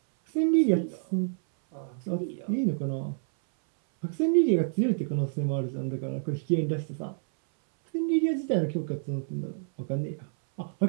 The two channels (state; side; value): silent; left; 59 dB below the other